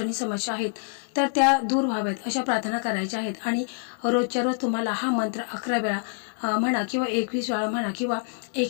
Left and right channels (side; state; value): right; silent; 61 dB below the other